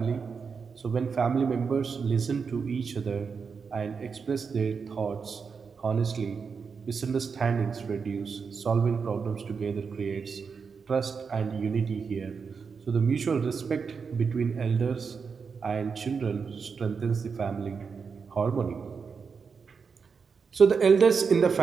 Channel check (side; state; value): left; quieter; 5.6 dB